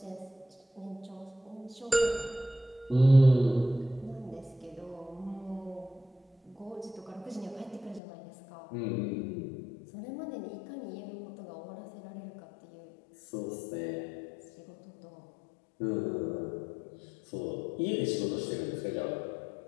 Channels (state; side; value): drops out; right; at 8.0 s